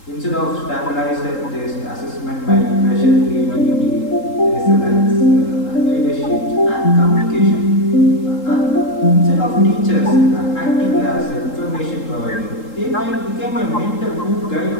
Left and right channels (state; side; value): late; right; 3.8 ms